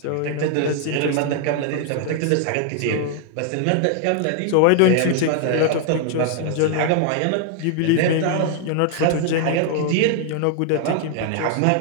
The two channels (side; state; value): both; different; correlation 0.00